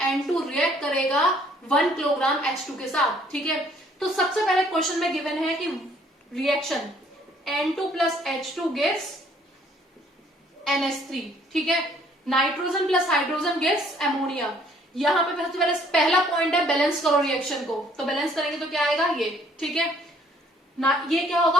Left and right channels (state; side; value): normal; both; correlation 0.61